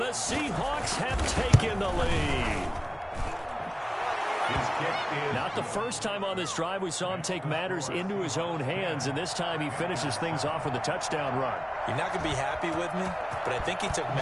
the Seahawks have taken the lead. Not the first time on this drive we saw him take matters into his own hands, and this time he finishes things off with a touchdown run. You're not going to be happy with me, but I think he took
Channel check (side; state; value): both; identical; correlation 1.00